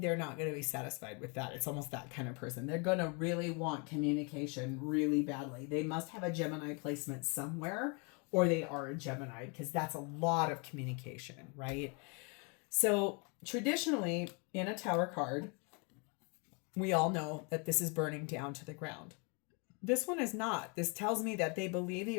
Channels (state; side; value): quieter; right; 34.2 dB